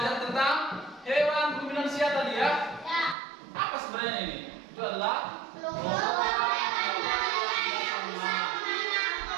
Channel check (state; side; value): drops out; left; at 3.2 s